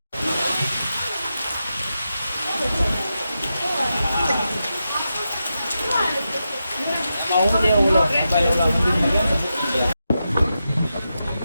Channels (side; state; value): both; inverted; correlation -0.89